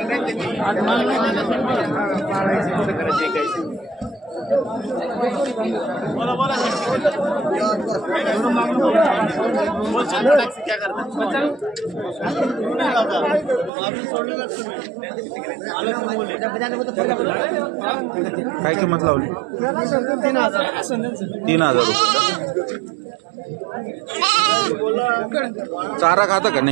काय किंमत लावली? 3,000 रुपये. चारा खाता का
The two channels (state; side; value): drops out; left; at 13.7 s